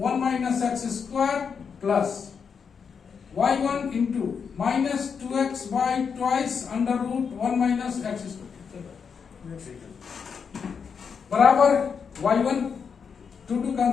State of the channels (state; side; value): quieter; right; 6.3 dB